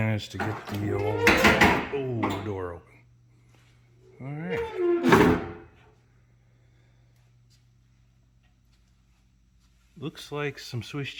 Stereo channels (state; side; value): identical; both; correlation 1.00